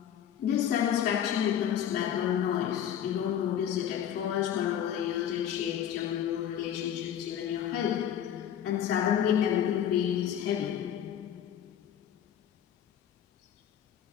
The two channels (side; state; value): right; quieter; 9.8 dB